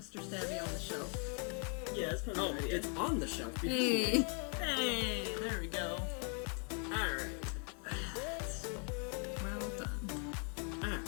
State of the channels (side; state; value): right; quieter; 39.8 dB